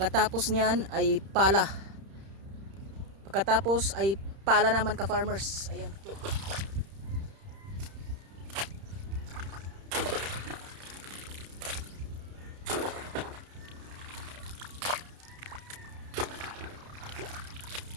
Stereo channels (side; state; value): left; late; 31 ms